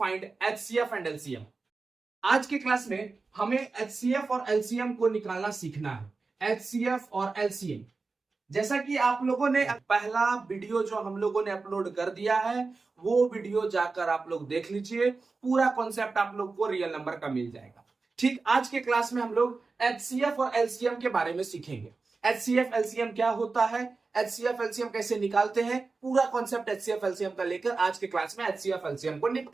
HCF and LCM। आज के क्लास में हमें HCF और LCM को निकालना सीखना है। HCF और LCM, जैसा कि आप लोगों ने पहला वीडियो जो हम लोगों ने अपलोड कर दिया है वो वीडियो जाकर आप लोग देख लीजिए, पूरा कॉन्सेप्ट आप लोग को रियल नंबर का मिल जाएगा। ठीक, आज के क्लास में हम लोग HCF और LCM के बारे में सीखेंगे। HCF LCM क्या होता है, HCF LCM कैसे निकालते हैं, पूरा कॉन्सेप्ट HCF LCM का लेकर आज के क्लास में HCF LCM को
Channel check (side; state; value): left; quieter; 4.1 dB